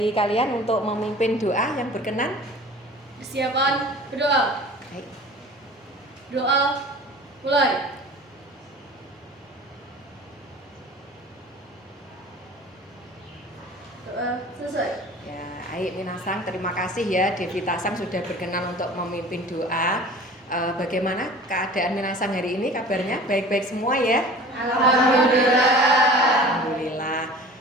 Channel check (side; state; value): both; normal; correlation 0.42